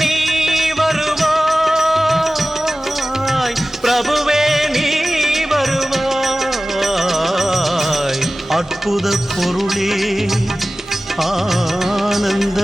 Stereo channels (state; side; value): normal; both; correlation 0.96